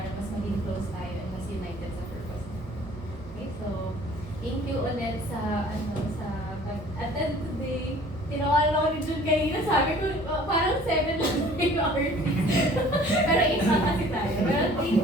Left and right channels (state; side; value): normal; both; correlation 0.51